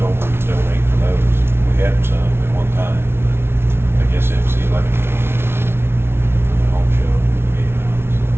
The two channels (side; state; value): left; late; 0.12 ms